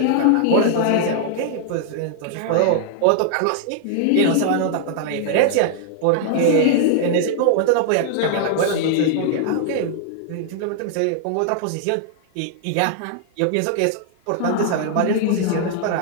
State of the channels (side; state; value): both; different; correlation -0.01